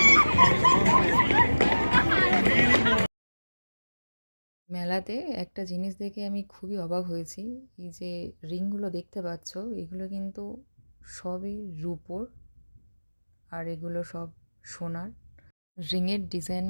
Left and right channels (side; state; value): both; inverted; correlation -1.00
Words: মেলাতে একটা জিনিস দেখে আমি খুবই অবাক হয়েছি। এই যে রিংগুলো দেখতে পাচ্ছ, এগুলো কিন্তু সবই রূপোর, আর এগুলো সব সোনার। রিংয়ের